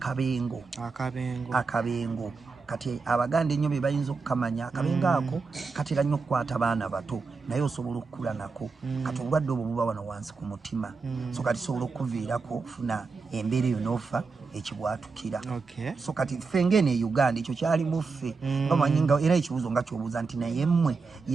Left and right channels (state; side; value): quieter; left; 4.5 dB